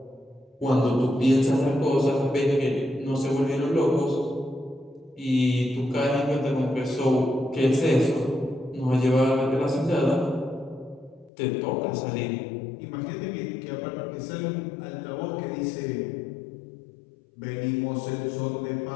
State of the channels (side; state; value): right; drops out; at 11.3 s